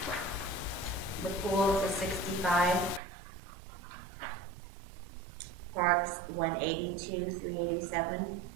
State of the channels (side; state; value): left; drops out; at 3.0 s